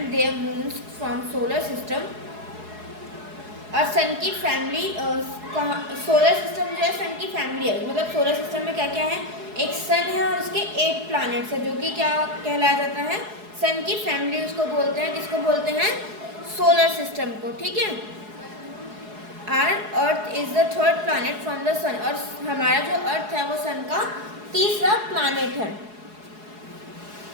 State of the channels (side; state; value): left; late; 4.7 ms